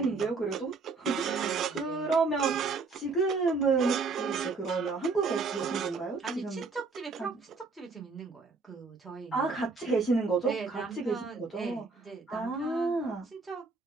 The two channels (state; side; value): quieter; left; 4.2 dB